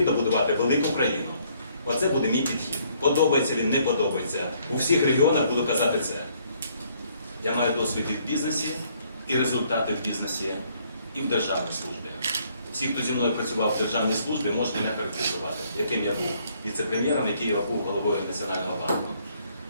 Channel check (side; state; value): both; inverted; correlation -0.66